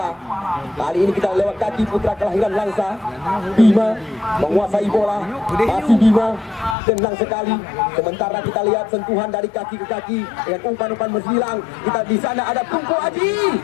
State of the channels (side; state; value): right; drops out; at 6.8 s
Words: Kali ini kita lewat kaki putra kelahiran Langsa. Bima menguasai bola. Masih Bima, tenang sekali. Sementara kita lihat sentuhan dari kaki ke kaki dengan umpan-umpan menghilang. Kita di sana ada Tengku Aji.